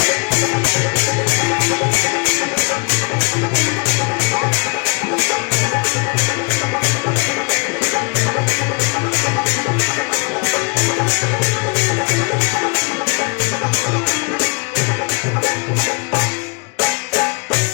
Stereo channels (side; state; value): right; quieter; 31.7 dB